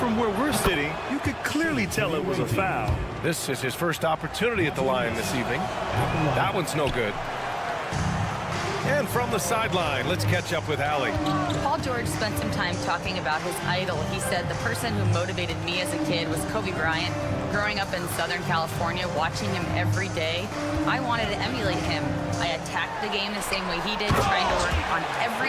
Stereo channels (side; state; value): both; identical; correlation 1.00